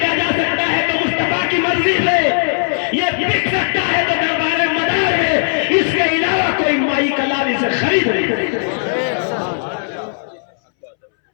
جا سکتا ہے تو مصطفیٰ کی مرضی سے، یہ بک سکتا ہے تو دربار مدار میں، اس کے علاوہ کوئی مائی کلام اسے خرید نہیں۔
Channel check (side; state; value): right; silent; 66 dB below the other